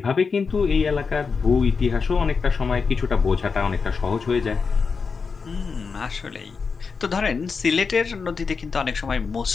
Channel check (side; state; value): right; quieter; 5.1 dB